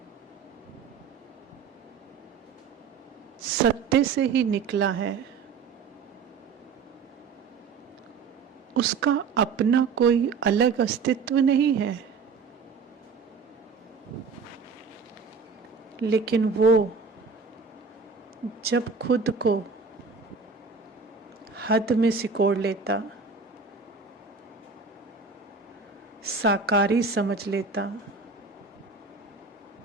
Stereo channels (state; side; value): quieter; left; 5.0 dB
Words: सत्य से ही निकला है। उसका अपना कोई अलग अस्तित्व नहीं है। लेकिन वो जब खुद को हद में सिकोड़ लेता, साकारी समझ लेता,